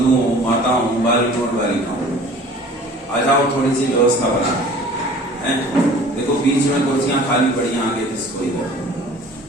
माताओं, बालिकों और बालिकाओं, आ जाओ, थोड़ी सी व्यवस्था बना है। देखो बीच में कुर्सियां खाली पड़ी, आगे किसको इधर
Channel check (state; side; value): normal; both; correlation 0.47